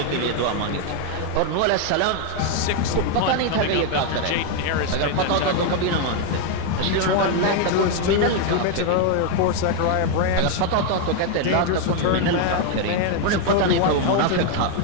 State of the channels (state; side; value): different; both; correlation 0.01